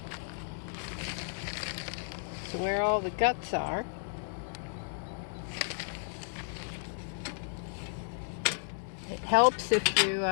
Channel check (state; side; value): silent; right; 56 dB below the other